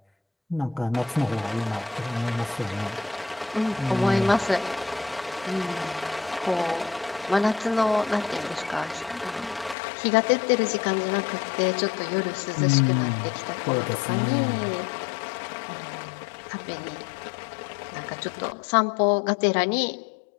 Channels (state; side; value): drops out; right; at 9.8 s